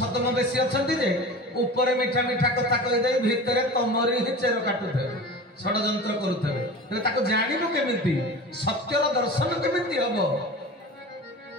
ବେଶୀ ଅଛନ୍ତି ଯେ ଉପରେ ମିଠା ମିଠା କଥା କହିଦେଇ ଭିତରେ ତମରି ହିଁ ଚେର କାଟୁଥିବେ, ଷଡଯନ୍ତ୍ର କରୁଥିବେ। ତେବେ ତାକୁ ଜାଣିବୁ କେମିତି? ସତ୍ୟର ଦର୍ଶନ କେମିତି ହବ?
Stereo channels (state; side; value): normal; both; correlation 0.34